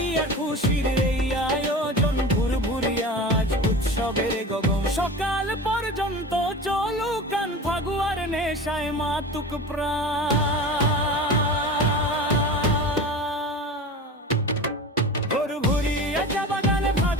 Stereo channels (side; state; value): both; normal; correlation 0.32